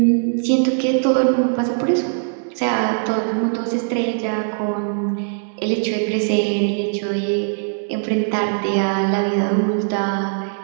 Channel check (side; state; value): left; silent; digital silence